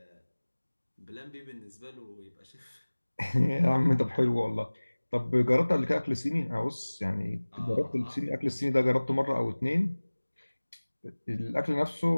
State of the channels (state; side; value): inverted; both; correlation -1.00